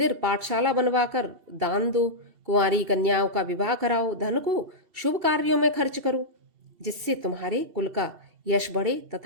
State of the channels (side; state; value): left; late; 2.7 ms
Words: पाठशाला बनवाकर दान दो, कुंवारी कन्याओं का विवाह कराओ, धन को शुभ कार्यों में खर्च करो, जिससे तुम्हारे कुल का यश बढ़े